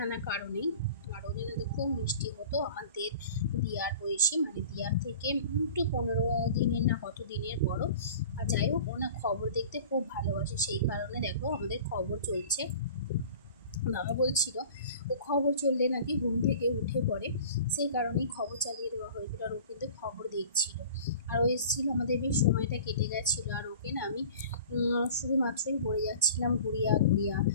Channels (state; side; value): inverted; both; correlation -0.43